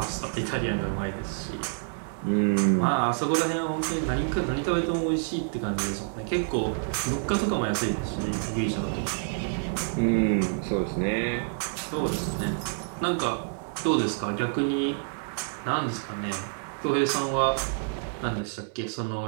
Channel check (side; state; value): left; silent; 59 dB below the other